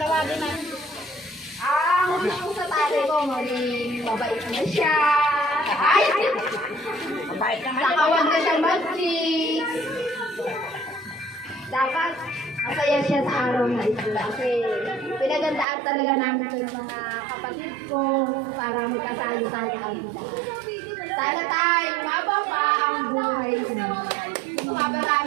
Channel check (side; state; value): left; drops out; at 15.7 s